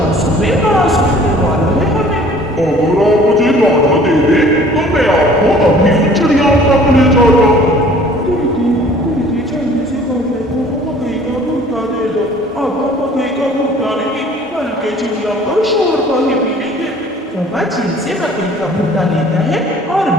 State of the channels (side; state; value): both; normal; correlation 0.52